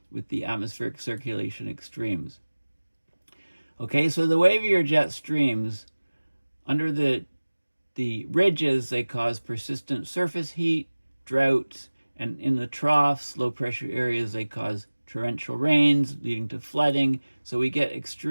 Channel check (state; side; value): inverted; both; correlation -1.00